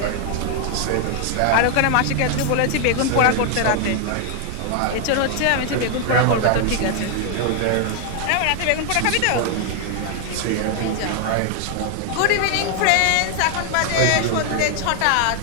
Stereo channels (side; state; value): both; different; correlation 0.00